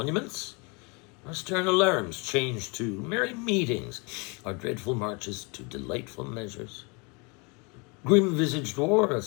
our stern alarms changed to merry meetings, our dreadful marches to delightful measures. Grim-visaged war hath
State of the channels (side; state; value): right; quieter; 30.8 dB